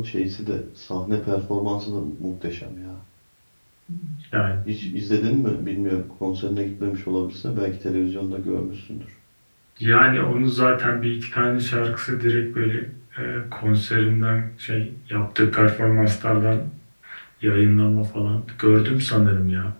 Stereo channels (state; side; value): inverted; both; correlation -1.00